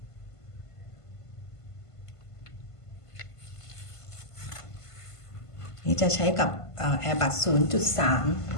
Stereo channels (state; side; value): late; right; 1.5 ms